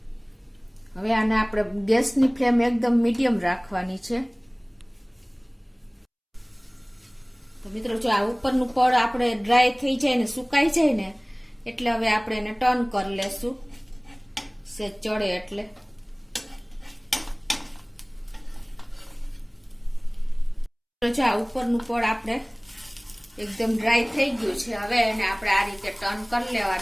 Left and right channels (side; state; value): both; identical; correlation 1.00